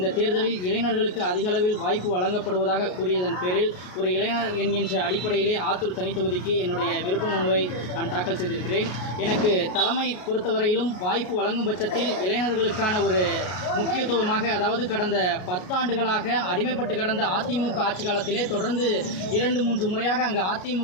தேர்தலில் இளைஞர்களுக்கு அதிக அளவில் வாய்ப்பு வழங்கப்படுவதாக கூறியதன் பேரில் ஒரு இளைஞர் என்கின்ற அடிப்படையிலே ஆத்தூர் தனி தொகுதிக்கு என்னுடைய விருப்ப மனுவை நான் தாக்கல் செய்திருக்கிறேன். எனக்கு தலைமை பொறுத்தவரையிலும் வாய்ப்பு வழங்கும் பட்சத்தில் இளைஞர்களுக்கான ஒரு முக்கியத்துவமாக, அதாவது கடந்த 10 ஆண்டுகளாக அடிமைப்பட்டு கடந்த அதிமுக ஆட்சி காலத்திலே தொடர்ந்து 2-3 முறையாக அங்கு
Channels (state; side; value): late; right; 33 ms